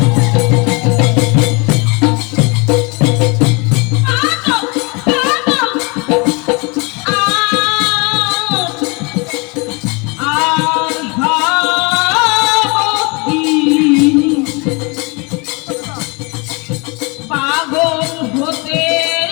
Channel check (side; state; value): right; quieter; 29.6 dB